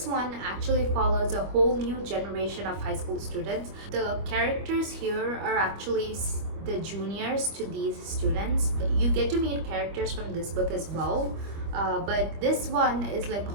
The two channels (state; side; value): late; left; 25 ms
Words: one actually follows a whole new generation of high school students. The characters here are actually the juniors to these students. You get to meet characters from this book as well, but this one is like a